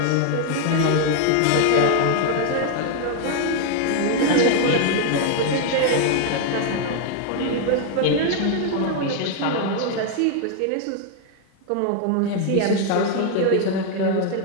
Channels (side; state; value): both; different; correlation 0.00